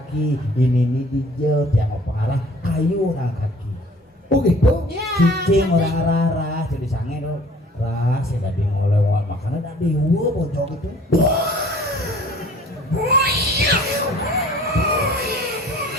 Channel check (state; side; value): normal; both; correlation 0.52